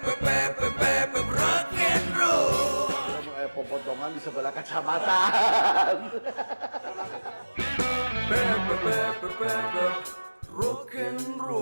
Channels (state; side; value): inverted; both; correlation -1.00